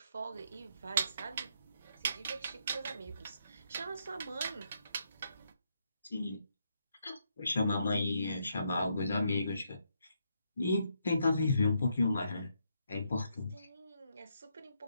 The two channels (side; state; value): both; inverted; correlation -0.77